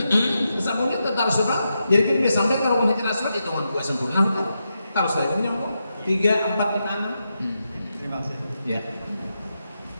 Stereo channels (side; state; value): both; inverted; correlation -0.86